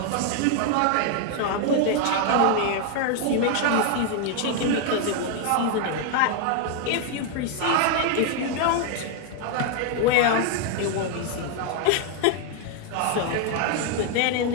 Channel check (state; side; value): different; both; correlation 0.00